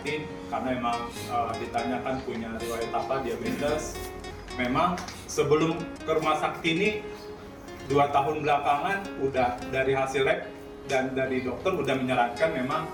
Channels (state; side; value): identical; both; correlation 1.00